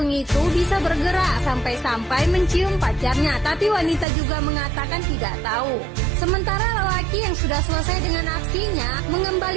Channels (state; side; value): drops out; left; at 4.0 s